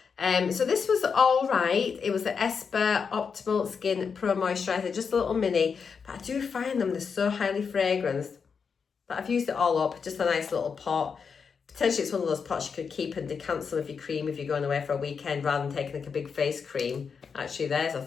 So this was all right. It was the Esper Optimal Skin Pro Moisturiser, just a little mini. But I do find them, they're so highly fragranced that I've used it all up. Just a nice little pot. Potentially it's one of those pots you could keep and decant some of your cream if you're going away for a weekend rather than taking like a big face cream. Actually, there's a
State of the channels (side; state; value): right; quieter; 5.9 dB